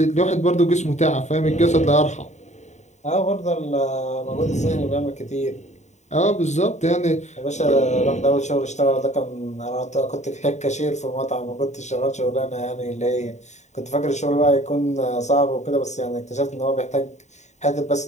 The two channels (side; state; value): right; late; 0.34 ms